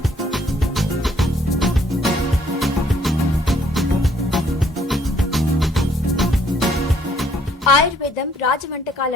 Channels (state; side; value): normal; both; correlation 0.65